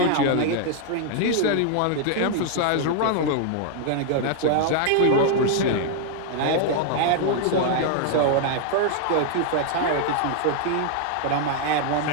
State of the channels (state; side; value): different; both; correlation 0.00